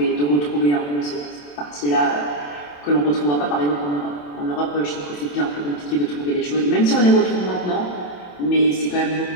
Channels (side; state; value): right; late; 27 ms